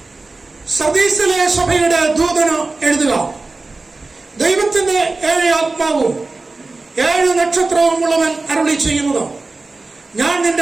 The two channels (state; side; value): quieter; left; 3.5 dB